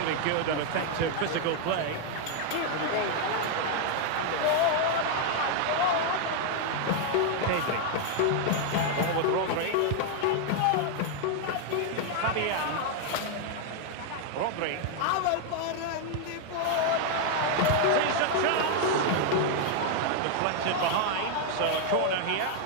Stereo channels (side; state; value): both; different; correlation 0.00